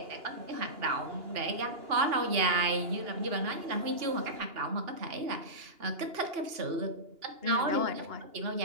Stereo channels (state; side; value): late; left; 2.8 ms